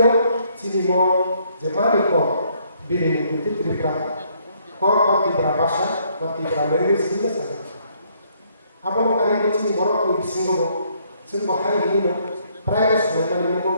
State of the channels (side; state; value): both; inverted; correlation -0.68